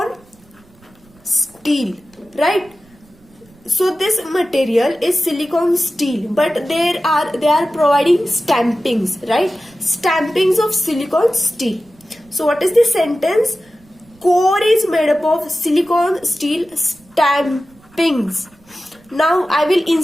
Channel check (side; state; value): right; noise; rumble, 29 dB below the sound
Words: steel, right? So this material is silicon steel, but they are providing stampings, right? Stampings of silicon steel. So what is the sentence? Core is made up of silicon steel stampings. Now I will